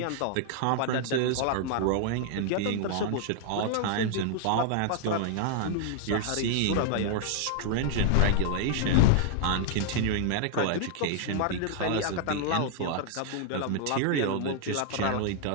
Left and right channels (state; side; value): different; both; correlation -0.01